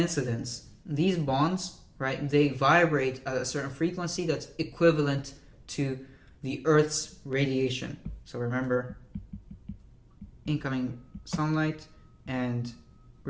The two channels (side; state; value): both; identical; correlation 1.00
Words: these bonds, right, they vibrate at a certain frequency that's equivalent to the Earth's radiation. So remember, incoming sunlight and